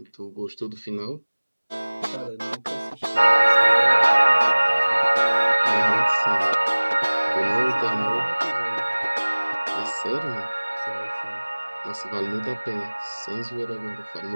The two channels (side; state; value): both; inverted; correlation -1.00